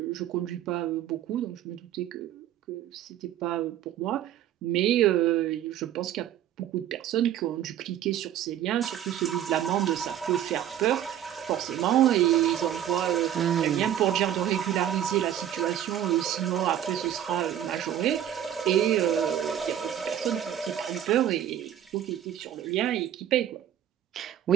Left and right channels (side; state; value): left; quieter; 10.9 dB